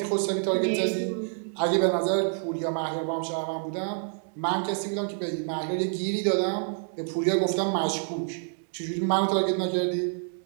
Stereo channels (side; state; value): left; silent; digital silence